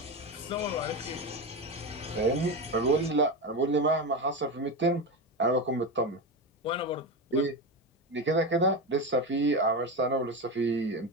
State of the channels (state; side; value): normal; both; correlation 0.18